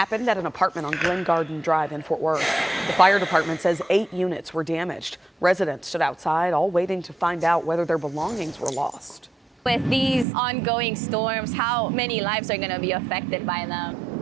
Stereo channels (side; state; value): left; drops out; at 10.2 s